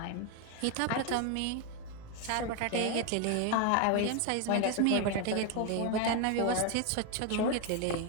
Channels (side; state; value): both; different; correlation 0.01